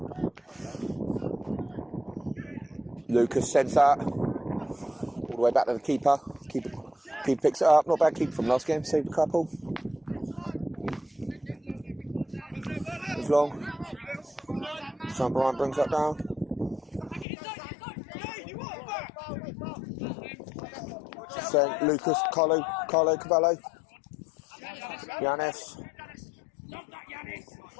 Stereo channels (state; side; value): drops out; right; at 17.2 s